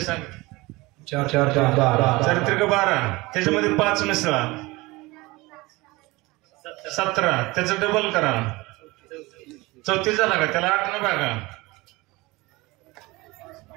सांग 4 4 12 चारित्रिक 12 त्याच्यामध्ये 5 मिसळा 17 त्याचं डबल करा 34 झाला का त्याला 8 न भागा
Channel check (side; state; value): left; quieter; 22.2 dB